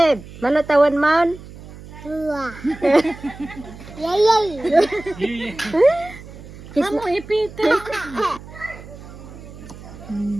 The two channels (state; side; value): noise; right; hum, 16 dB below the sound